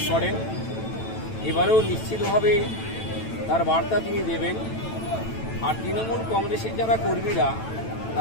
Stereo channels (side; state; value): right; late; 9.1 ms